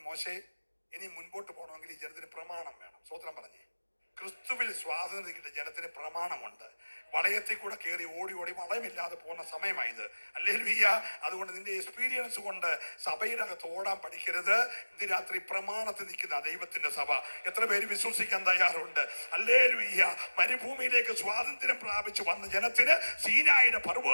മോശേ ഇനി മുൻപോട്ട് പോകണമെങ്കിൽ ഈ ജനത്തിന് പ്രമാണം വേണം. സ്തോത്രം പറഞ്ഞേ. ക്രിസ്തുവിൽ സ്വാതന്ത്ര്യം കിട്ടിയ ജനത്തിന് പ്രമാണമുണ്ട്. വളയത്തിൽ കൂടെ കയറി ഓടി വളയമില്ലാതെ പോകുന്ന സമയമായത്. ഹല്ലേലൂയ. അതുകൊണ്ട് നിന്റെ എക്സ്പീരിയൻസ് കൊണ്ട് സഭയുടെ അകത്ത് ഓടാൻ പഠിക്കരുത്. ഇന്ന് രാത്രി പ്രമാണത്തിൽ നിൽക്കുന്ന ദൈവത്തിന്റെ സഭ എത്ര പേര് വിശ്വസിക്കാൻ തയ്യാറുണ്ട്? ഹല്ലേലൂയ. മരുഭൂമിയിലേക്ക് സ്വാതന്ത്ര്യം പ്രാപിച്ചു വന്ന ജനത്തിന് സീനായുടെ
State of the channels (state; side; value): inverted; both; correlation -1.00